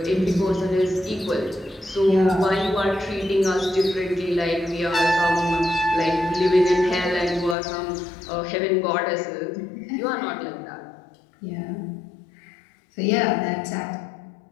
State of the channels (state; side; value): drops out; right; at 7.6 s